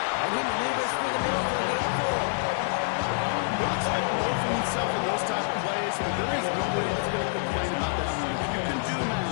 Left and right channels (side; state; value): right; silent; digital silence